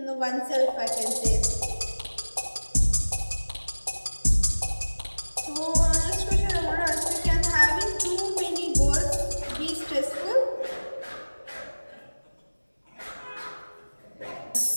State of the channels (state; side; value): inverted; both; correlation -1.00